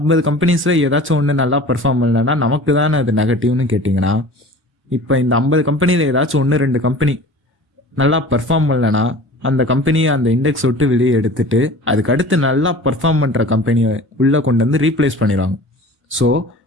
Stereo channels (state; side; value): normal; both; correlation 0.41